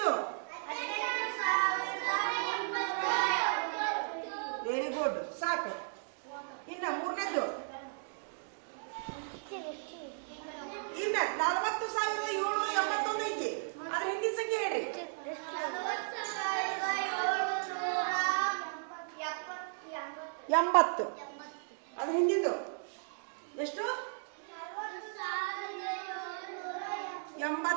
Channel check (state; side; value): silent; left; digital silence